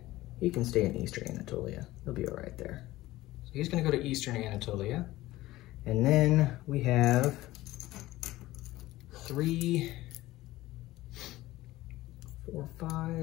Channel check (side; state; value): right; quieter; 17.1 dB